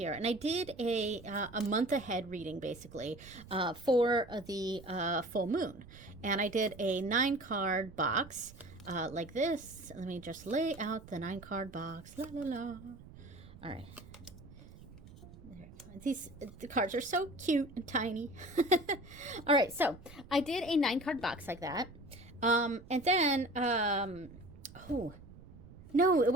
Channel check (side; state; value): right; noise; rumble, 19 dB below the sound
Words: and I did a month ahead reading, basically, for the full moon. And I did a 9-card box like this. Let me just lay out the 9-card box. La la la. All right. The cards are so cute and tiny. All right, so I did a 9-card box like that. And then, oh, no, it